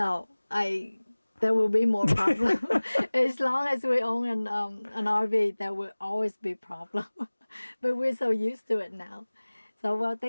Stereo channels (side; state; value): both; inverted; correlation -1.00